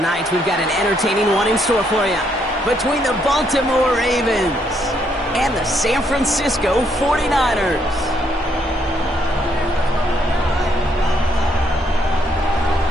we've got an entertaining one in store for you. Between the Baltimore Ravens and the San Francisco 49ers.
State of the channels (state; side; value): normal; both; correlation 0.72